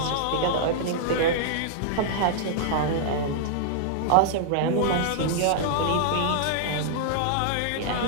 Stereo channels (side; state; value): both; different; correlation -0.01